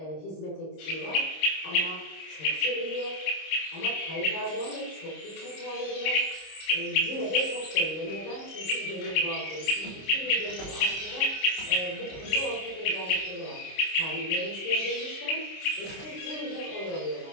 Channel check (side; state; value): right; late; 26 ms